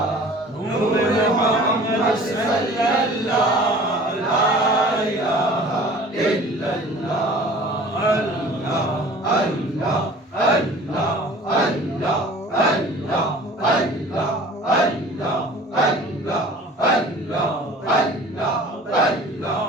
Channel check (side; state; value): both; normal; correlation 0.45